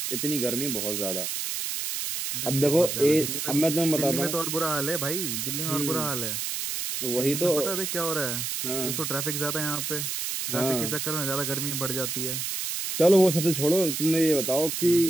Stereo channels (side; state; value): right; noise; hiss, 3 dB below the sound